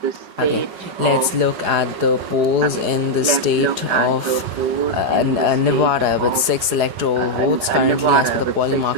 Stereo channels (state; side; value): late; left; 4.8 ms